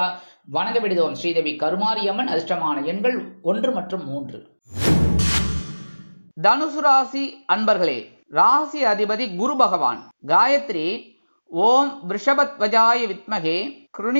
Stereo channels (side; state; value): both; inverted; correlation -1.00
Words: வணங்க விடுதோம் ஸ்ரீதேவி கருமாரியம்மன். அதிர்ஷ்டமான எண்கள் 1 மற்றும் 3. தனுசு ராசி அன்பர்களே, ராசி அதிபதி குரு பகவான். காயத்ரி ஓம் விருஷபத்வஜாய வித்மகே